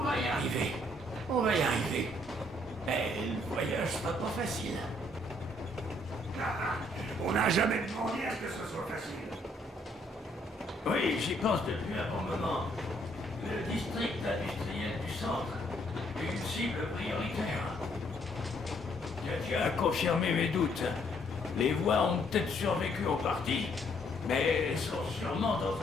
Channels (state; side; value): normal; both; correlation 0.68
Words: va y arriver. On va y arriver. Mais le voyage sera pas facile. On n'a jamais demandé à ce que ce soit facile. Oui, j'y pense depuis un bon moment. Le district industriel du centre est une cible prioritaire. Tu as confirmé mes doutes. Les voies ont peut-être survécu en partie, mais sont sûrement dans